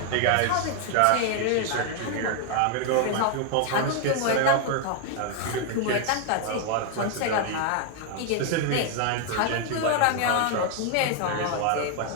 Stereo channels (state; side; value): different; both; correlation 0.00